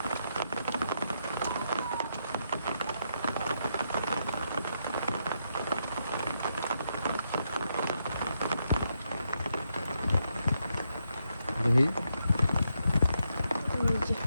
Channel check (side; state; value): both; inverted; correlation -0.80